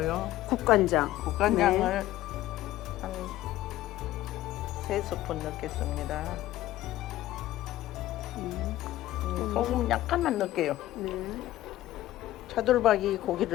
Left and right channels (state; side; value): quieter; right; 15.0 dB